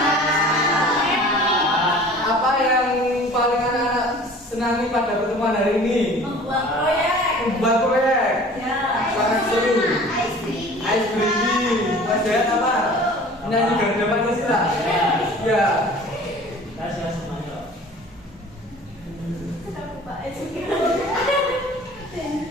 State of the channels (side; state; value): both; normal; correlation 0.45